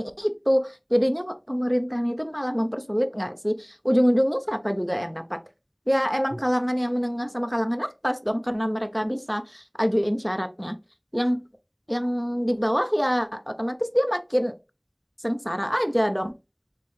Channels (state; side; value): identical; both; correlation 1.00